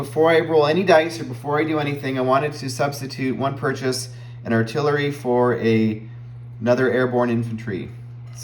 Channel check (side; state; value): both; identical; correlation 1.00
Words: I roll any dice or before I do anything, I wanted to substitute one purchase, an artillery for another airborne infantry.